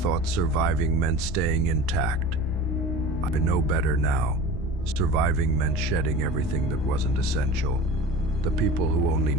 surviving meant staying intact. I know better now. Surviving meant shedding everything that wasn't essential. The people who only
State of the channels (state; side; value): normal; both; correlation 0.36